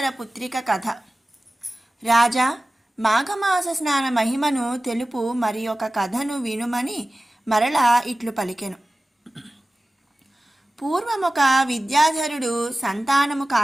పుత్రిక కథ. రాజా, మాఘమాస స్నాన మహిమను తెలుపు మరి ఒక కథను వినుమని మరలా ఇట్లు పలికెను. పూర్వమొక విద్యాధరుడు సంతానము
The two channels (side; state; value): both; normal; correlation 0.97